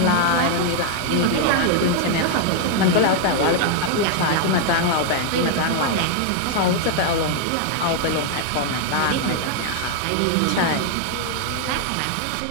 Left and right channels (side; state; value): both; different; correlation 0.00